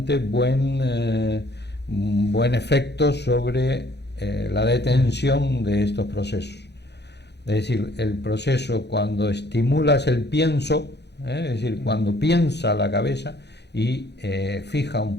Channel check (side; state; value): right; late; 0.49 ms